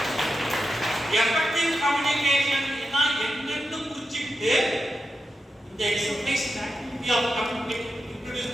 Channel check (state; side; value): normal; both; correlation 0.88